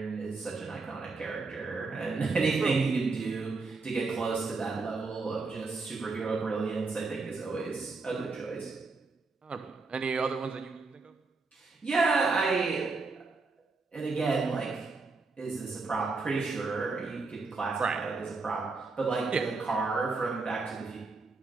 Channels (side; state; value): left; quieter; 4.0 dB